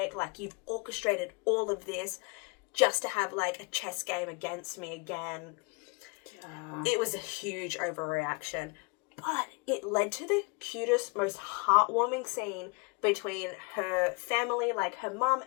Like, you've orchestrated all of this just to have, like, a chess game against me again. Yeah. It was a huge overreaction. But it led to the cutest, most heartwarming scene between her family, like her mum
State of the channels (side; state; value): right; quieter; 30.4 dB